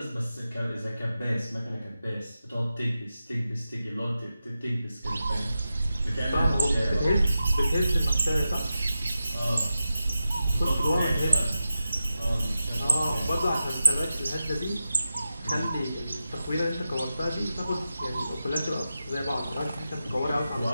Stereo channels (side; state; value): both; inverted; correlation -0.91